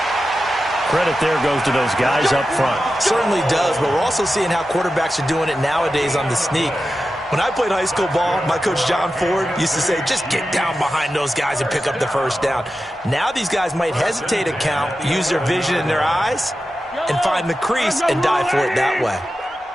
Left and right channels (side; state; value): both; normal; correlation 0.92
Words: Credit there goes to those guys up front. Certainly does, but we're also seeing how quarterbacks are doing it nowadays on the sneak. When I played high school ball, my coach John Ford used to say, just get down behind those guys and pick up the first down. Now these guys might hesitate to count, use their vision in their eyes, and find the crease and dive for it that way.